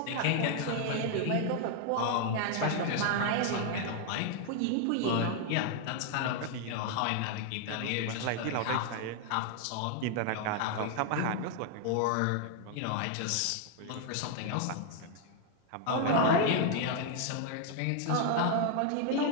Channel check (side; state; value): both; different; correlation 0.00